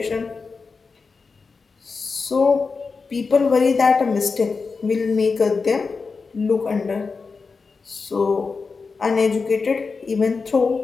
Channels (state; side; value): quieter; right; 4.6 dB